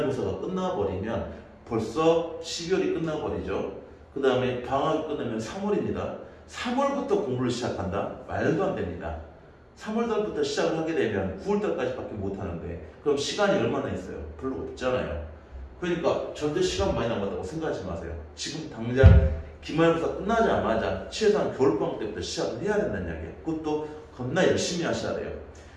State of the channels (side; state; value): both; identical; correlation 1.00